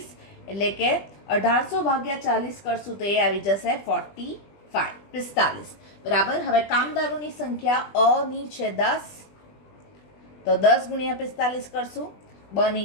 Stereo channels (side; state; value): right; late; 20 ms